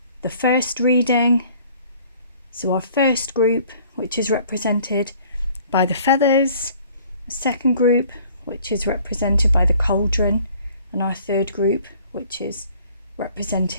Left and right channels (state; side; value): inverted; both; correlation -0.55